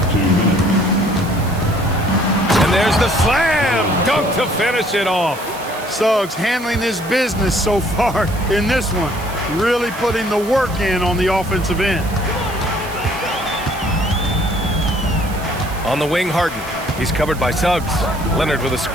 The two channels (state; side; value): noise; right; hiss, 17 dB below the sound